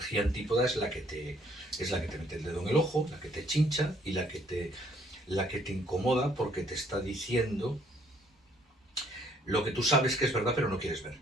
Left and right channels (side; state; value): both; normal; correlation 0.64